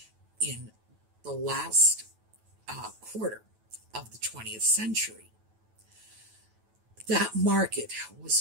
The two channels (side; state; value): left; late; 9.2 ms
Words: in the last quarter of the 20th century. That market